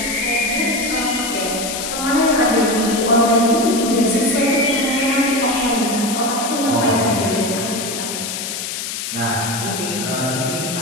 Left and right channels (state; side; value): noise; left; hiss, 5 dB below the sound